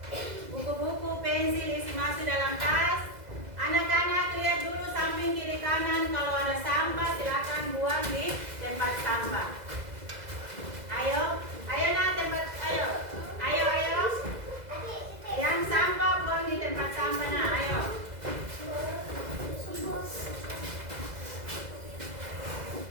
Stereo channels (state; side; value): late; left; 2.0 ms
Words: Buku-buku, pensil isi masuk dalam tas. Anak-anak lihat dulu samping kiri kanan, kalau ada sampah silakan buang di tempat sampah. Ayo, ayo nak tempat, ayo, ayo, ayo. Yang sampah buang di tempat sampah nak, ayo.